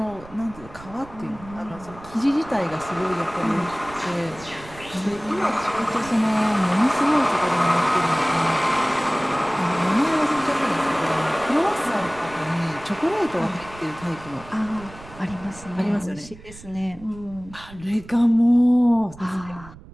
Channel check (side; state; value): right; noise; rumble, 19 dB below the sound